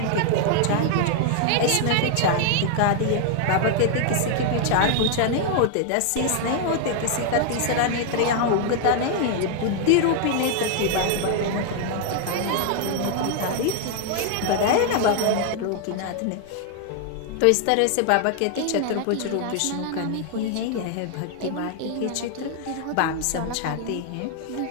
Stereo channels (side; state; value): both; different; correlation 0.00